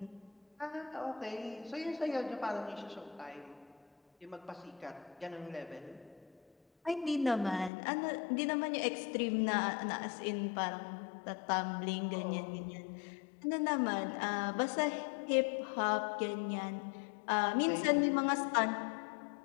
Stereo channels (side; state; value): right; drops out; at 7.7 s